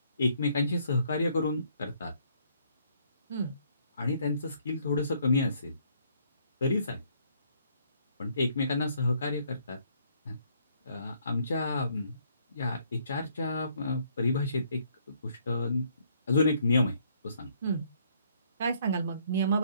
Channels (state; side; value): inverted; both; correlation -0.67